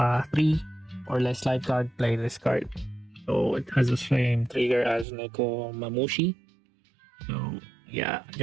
or less life card, play this card. So it has the same trigger as Neko Mamushi. So yeah,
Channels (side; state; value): left; drops out; at 5.1 s